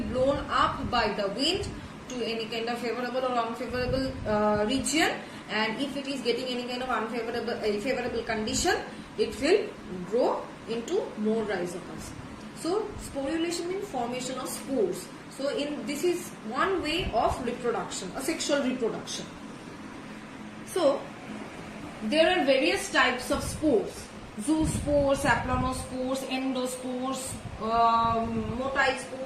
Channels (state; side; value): identical; both; correlation 1.00